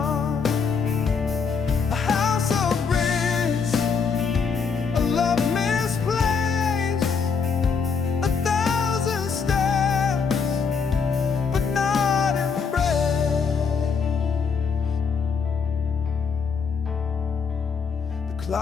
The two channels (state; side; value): quieter; right; 5.7 dB